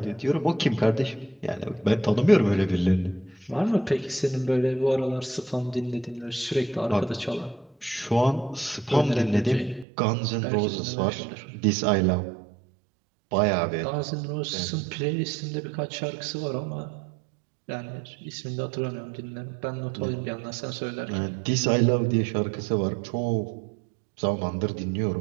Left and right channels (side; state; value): left; drops out; at 9.9 s